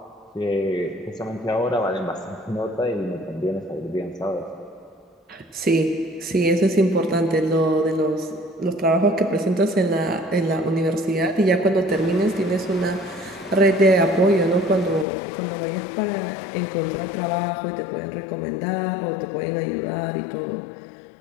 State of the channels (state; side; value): drops out; right; at 15.1 s